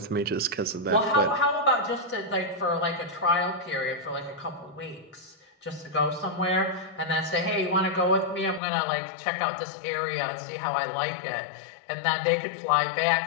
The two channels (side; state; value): right; drops out; at 8.6 s